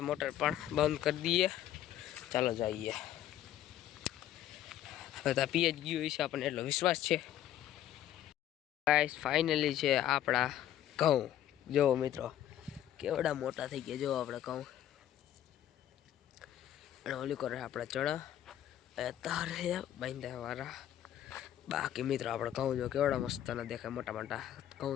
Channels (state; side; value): quieter; right; 11.8 dB